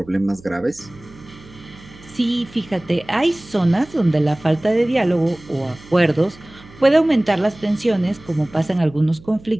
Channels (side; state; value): right; noise; hum, 22 dB below the sound